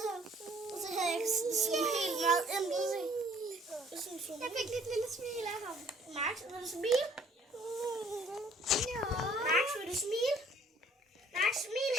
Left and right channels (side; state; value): both; normal; correlation 0.58